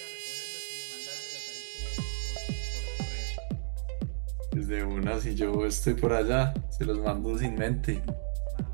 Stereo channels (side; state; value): left; silent; digital silence